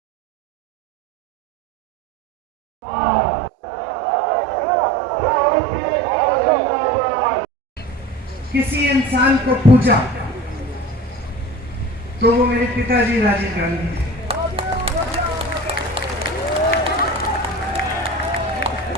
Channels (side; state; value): both; normal; correlation 0.36